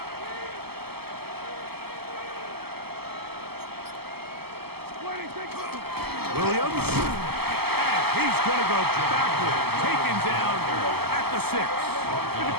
Williams, and he's going to go backward, taken down at the 6.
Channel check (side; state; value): left; late; 0.96 ms